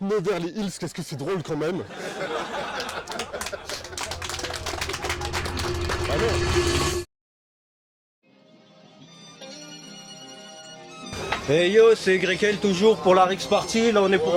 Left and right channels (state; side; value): identical; both; correlation 1.00